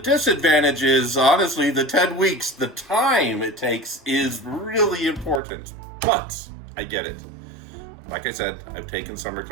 is, honestly, the 10 weeks, the time it takes is really important. But I get it. Like I said, I've taken summer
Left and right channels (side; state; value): left; drops out; at 5.4 s